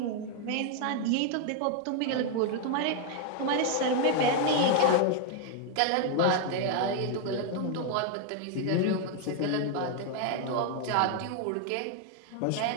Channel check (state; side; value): different; both; correlation 0.01